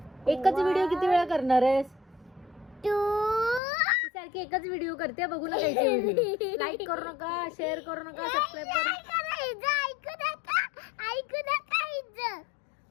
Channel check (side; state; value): right; drops out; at 3.6 s